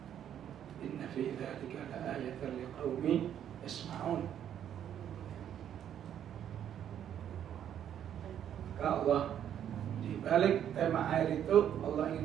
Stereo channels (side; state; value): left; quieter; 9.9 dB